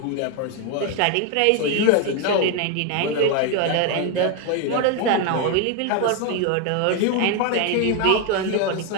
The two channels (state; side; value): different; both; correlation 0.01